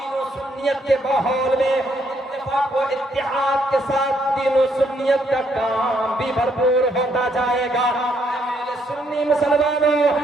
و سنیت کے ماحول میں اتفاق و اتحاد کے ساتھ دین و سنیت کا کام بھی بھرپور ہوتا جائے گا۔ میرے سنی مسلمانوں،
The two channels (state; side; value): normal; both; correlation 0.72